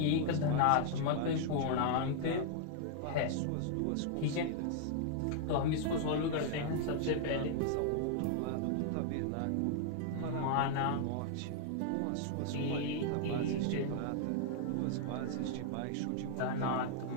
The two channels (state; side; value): different; both; correlation 0.00